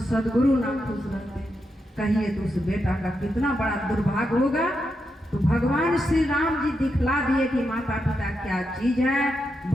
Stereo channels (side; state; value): both; normal; correlation 0.85